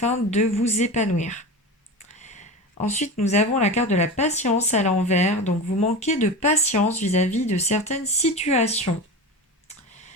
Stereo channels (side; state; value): both; normal; correlation 0.27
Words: de vous épanouir. Ensuite, nous avons la carte de la patience à l'envers. Donc, vous manquez de patience vis-à-vis de certaines situations.